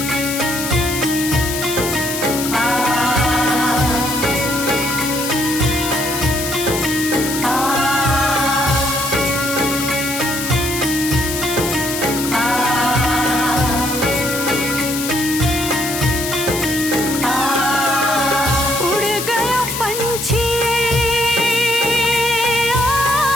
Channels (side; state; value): left; noise; hiss, 5 dB below the sound